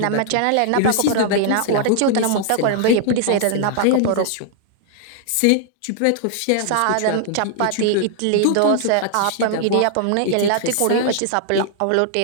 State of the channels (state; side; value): different; both; correlation -0.01